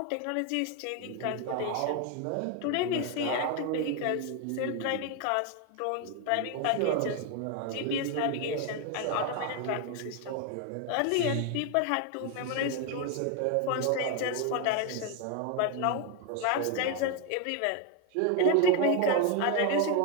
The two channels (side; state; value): both; different; correlation 0.01